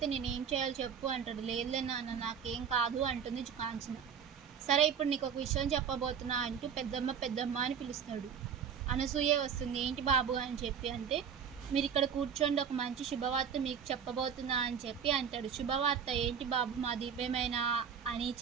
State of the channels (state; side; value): quieter; left; 7.3 dB